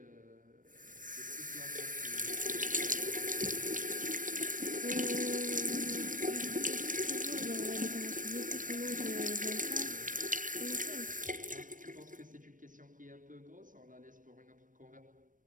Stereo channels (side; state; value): left; late; 0.38 ms